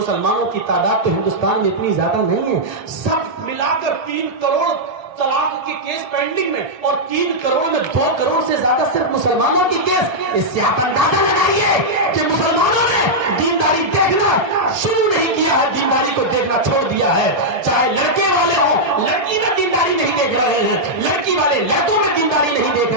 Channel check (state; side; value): late; left; 1.8 ms